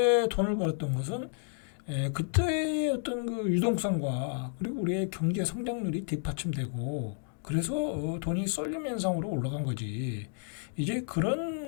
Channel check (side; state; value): right; silent; 56 dB below the other